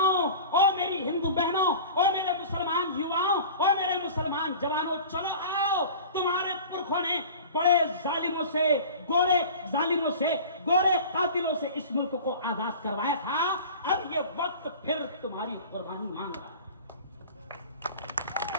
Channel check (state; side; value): inverted; both; correlation -0.39